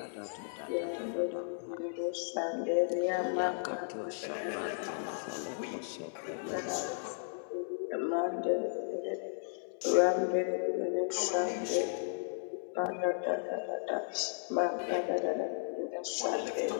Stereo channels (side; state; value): right; silent; digital silence